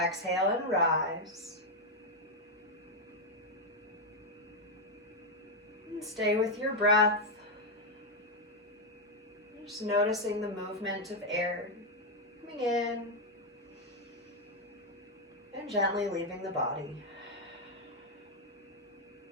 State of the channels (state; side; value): normal; both; correlation 0.02